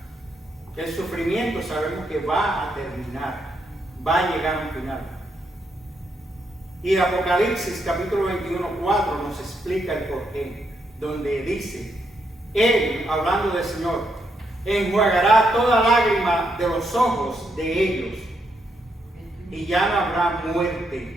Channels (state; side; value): normal; both; correlation 0.78